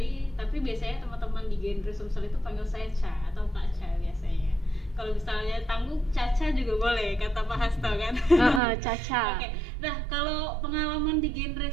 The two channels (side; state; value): left; drops out; at 8.6 s